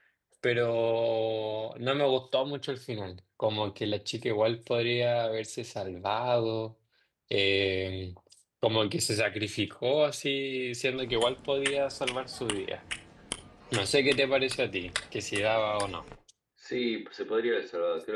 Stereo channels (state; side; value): identical; both; correlation 1.00